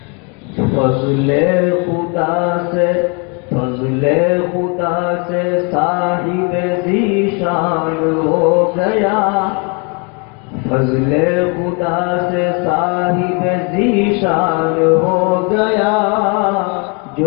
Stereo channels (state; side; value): quieter; right; 34.3 dB